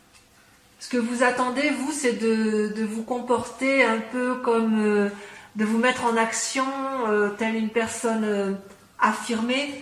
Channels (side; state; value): both; identical; correlation 1.00